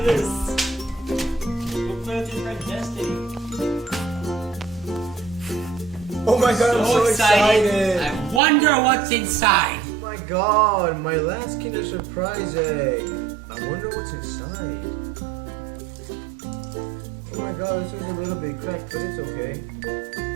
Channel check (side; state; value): left; drops out; at 8.4 s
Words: this. We'll play with your friend Destiny. Oh my god, I'm so excited. I wonder what's inside. Oh my god, my last Kinder Surprise egg. I wonder what's inside. Oh my god, this is a little bit cracked, but it's okay.